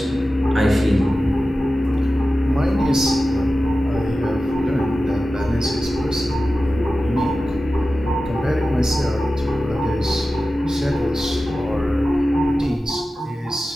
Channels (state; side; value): normal; both; correlation 0.94